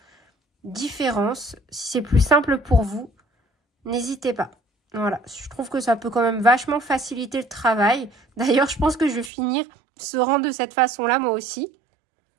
différence. Si c'est plus simple pour vous, n'hésitez pas. Voilà, je trouve que ça peut quand même vachement faciliter le travail. D'ailleurs, je pense que je vais finir ce rang de cette façon-là, moi aussi.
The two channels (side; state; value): left; drops out; at 9.3 s